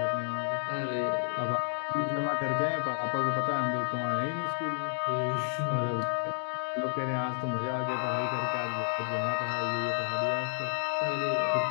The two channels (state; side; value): silent; right; digital silence